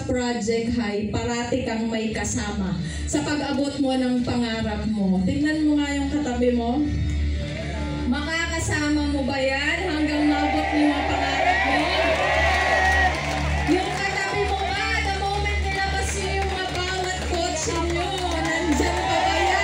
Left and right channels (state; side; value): identical; both; correlation 1.00